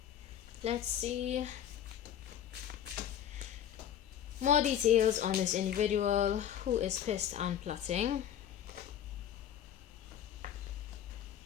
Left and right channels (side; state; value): right; quieter; 10.0 dB